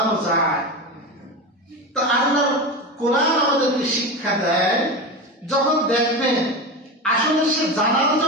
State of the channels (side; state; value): both; normal; correlation 0.22